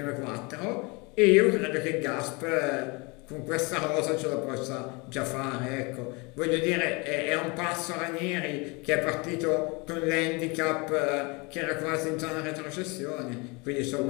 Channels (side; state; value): right; quieter; 28.1 dB